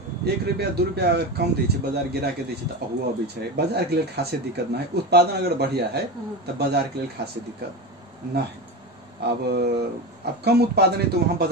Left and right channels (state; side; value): normal; both; correlation 0.22